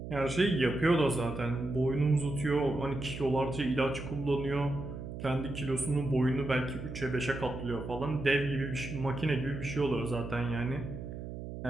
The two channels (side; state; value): right; noise; hum, 9 dB below the sound